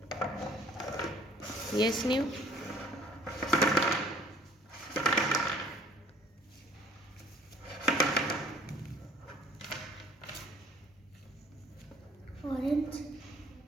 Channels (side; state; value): both; normal; correlation 0.55